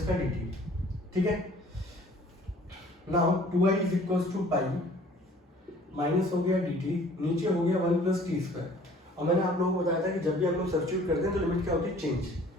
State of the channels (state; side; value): normal; both; correlation 0.53